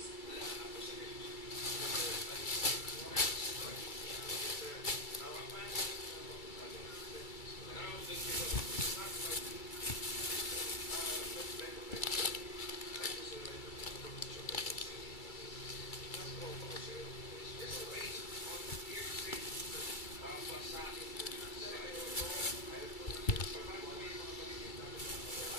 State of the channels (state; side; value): late; right; 2.3 ms